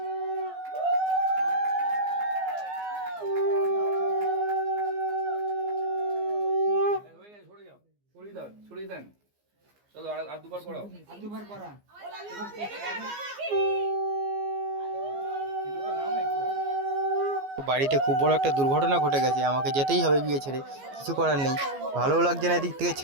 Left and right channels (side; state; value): left; late; 15 ms